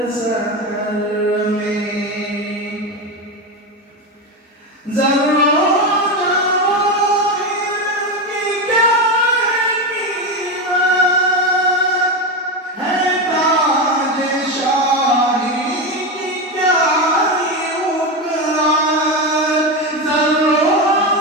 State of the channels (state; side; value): normal; both; correlation 0.15